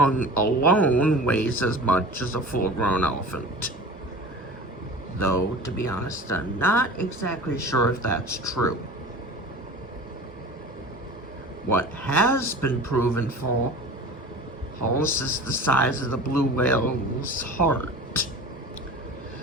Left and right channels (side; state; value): both; normal; correlation 0.37